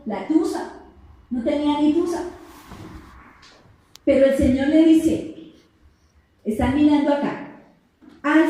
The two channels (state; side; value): identical; both; correlation 1.00